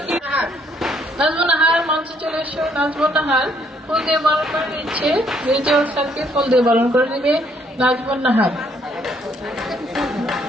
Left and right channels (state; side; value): normal; both; correlation 0.68